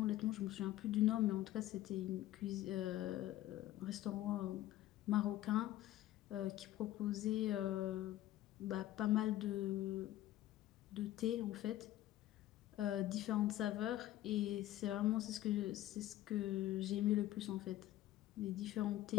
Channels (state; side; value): quieter; right; 14.6 dB